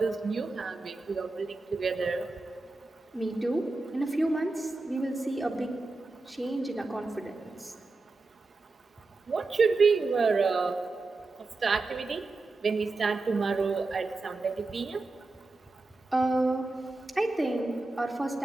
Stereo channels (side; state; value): left; quieter; 3.4 dB